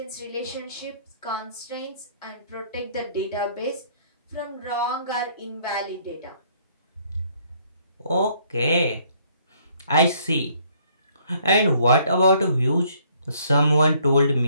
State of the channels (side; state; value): both; inverted; correlation -0.64